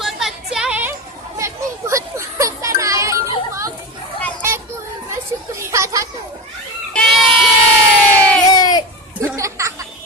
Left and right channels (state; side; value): normal; both; correlation 0.22